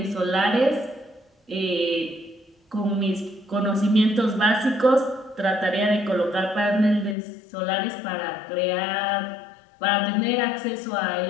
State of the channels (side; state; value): right; drops out; at 7.2 s